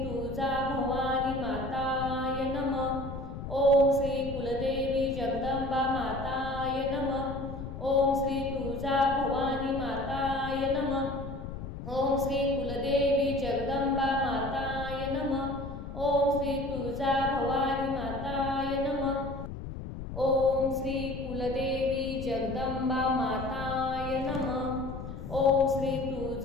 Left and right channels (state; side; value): noise; left; rumble, 8 dB below the sound